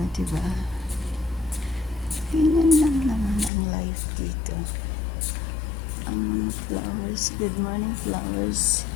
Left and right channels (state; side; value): drops out; right; at 3.5 s